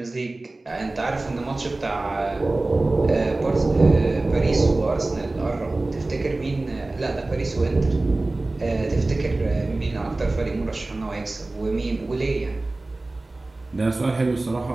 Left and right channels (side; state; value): left; quieter; 3.0 dB